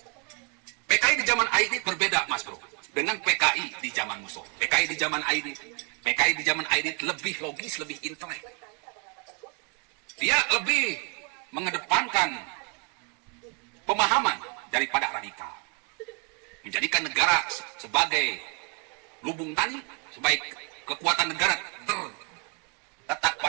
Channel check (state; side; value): quieter; left; 36.5 dB